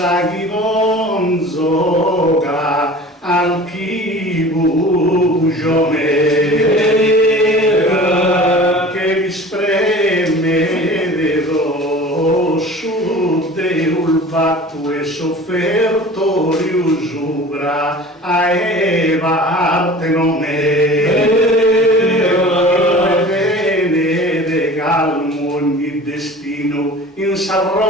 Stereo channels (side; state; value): both; normal; correlation 0.41